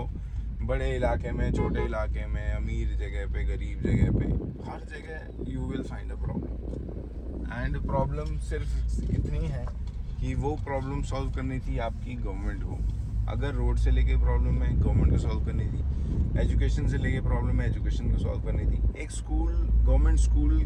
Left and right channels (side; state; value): both; identical; correlation 1.00